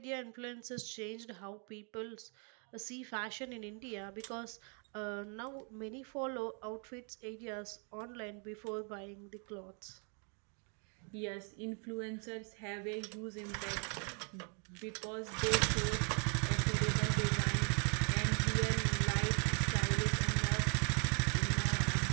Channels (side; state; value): left; quieter; 39.0 dB